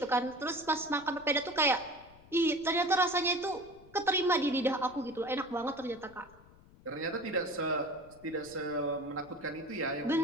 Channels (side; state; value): left; noise; rumble, 24 dB below the sound